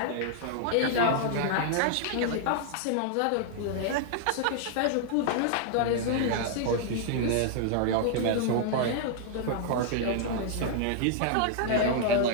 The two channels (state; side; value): different; both; correlation 0.00